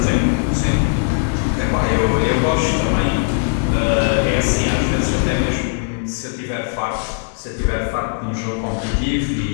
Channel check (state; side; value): silent; right; 67 dB below the other